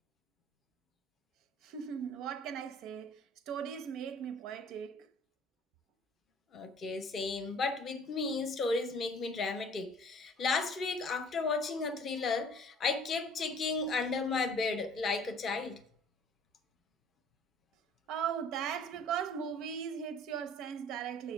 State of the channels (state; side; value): normal; both; correlation 0.51